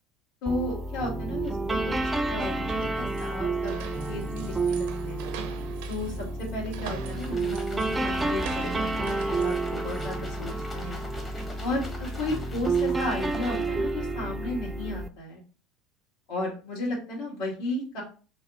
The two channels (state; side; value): normal; both; correlation 0.72